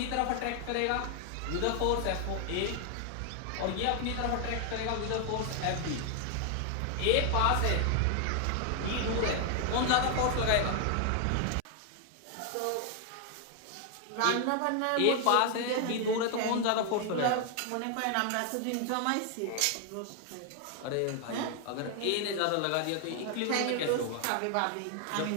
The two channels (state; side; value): different; both; correlation 0.00